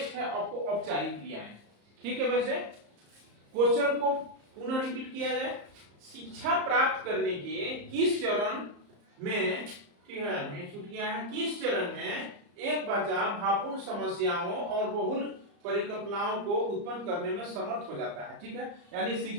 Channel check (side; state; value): left; late; 34 ms